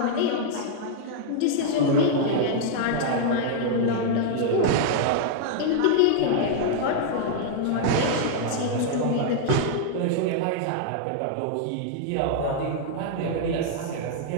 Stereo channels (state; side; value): different; both; correlation -0.01